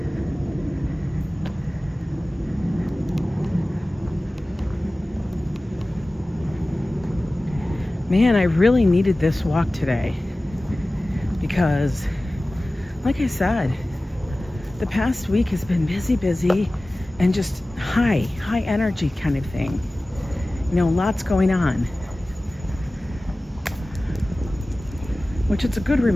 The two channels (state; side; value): normal; both; correlation 0.97